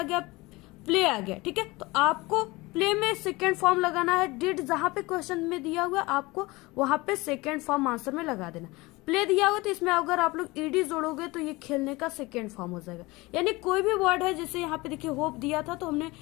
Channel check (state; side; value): quieter; right; 22.2 dB